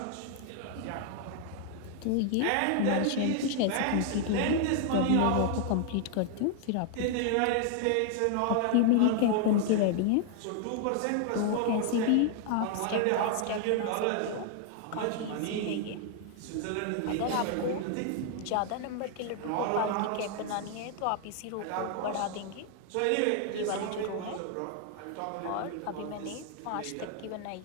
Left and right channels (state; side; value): different; both; correlation 0.00